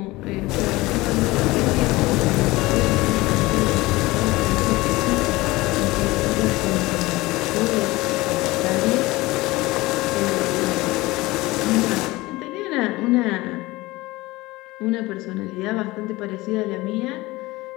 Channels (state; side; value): quieter; right; 20.4 dB